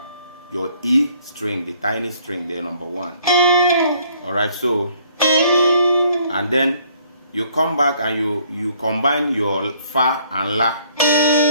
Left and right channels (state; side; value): inverted; both; correlation -0.62